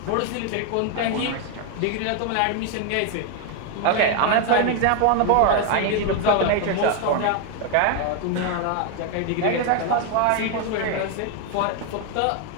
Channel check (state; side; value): different; both; correlation 0.01